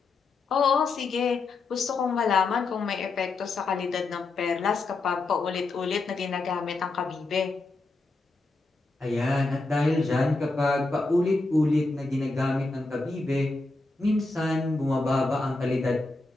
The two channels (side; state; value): right; quieter; 3.5 dB